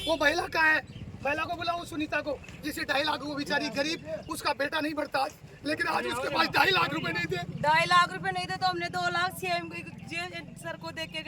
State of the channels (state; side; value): identical; both; correlation 1.00